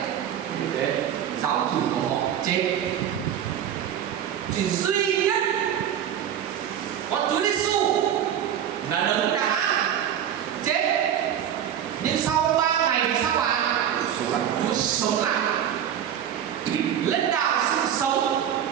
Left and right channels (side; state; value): left; quieter; 9.7 dB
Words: Giáo chủ của họ chết. Chỉ duy nhất có Chúa Giêsu là đấng đã chết, nhưng sau 3 ngày thì sao ạ? Chúa sống lại, lãnh đạo sự sống.